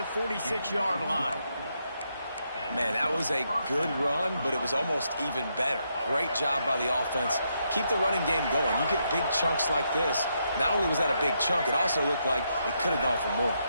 46-yard line. Man, that was a good run, but it was almost even better. Great job by the offense. Keep the running game going. You get big chunks like this. Not only was that a big chunk, it also looked like it could have gone for more.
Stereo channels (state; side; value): inverted; both; correlation -0.79